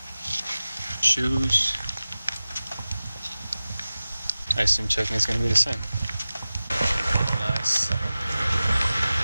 Shoes. I assume checking is gonna be the same. Nice.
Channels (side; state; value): both; inverted; correlation -0.96